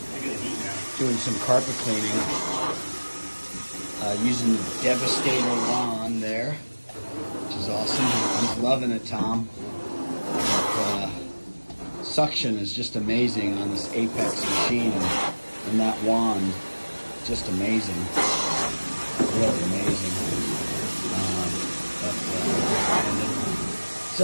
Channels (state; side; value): inverted; both; correlation -1.00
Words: doing some carpet cleaning using the Devastator wand there, which is awesome. He's loving it, Tom. But, suction is just amazing on this Apex machine, and that wand, just amazing, really amazing. Brandon. What's